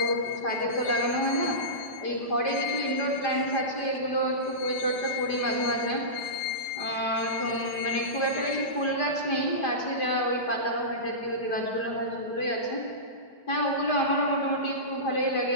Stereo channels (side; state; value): right; late; 5.0 ms